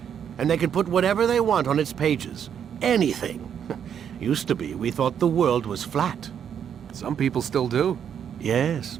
and they can put whatever they want on its pages. Anything. Used to be, we thought the world was flat. Some people still do. Yes,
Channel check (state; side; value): quieter; left; 8.4 dB